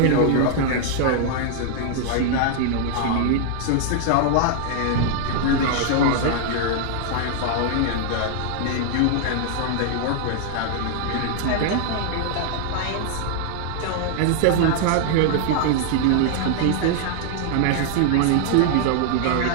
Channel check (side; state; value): both; different; correlation 0.00